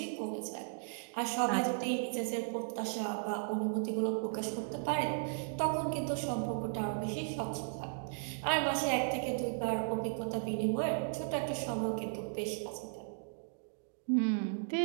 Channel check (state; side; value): silent; left; digital silence